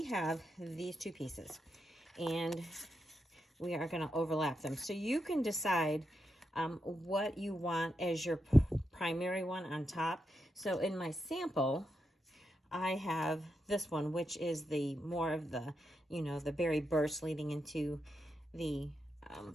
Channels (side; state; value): both; normal; correlation 0.85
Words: have these two pieces and we are going to overlap them. So you can decide what you want as your primary one on top. So in my sample, I have this one, which is the more of the, you know, the berry burst leading into the